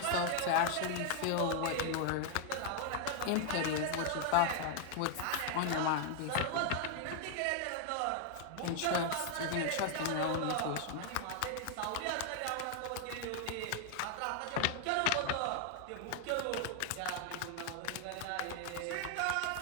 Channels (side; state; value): both; different; correlation 0.00